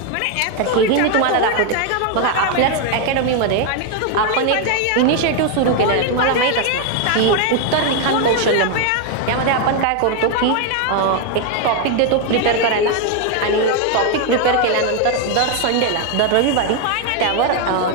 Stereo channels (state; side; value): different; both; correlation 0.01